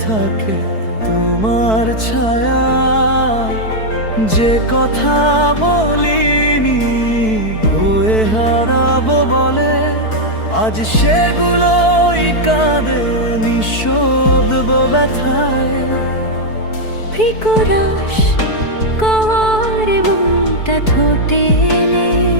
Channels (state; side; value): late; right; 4.6 ms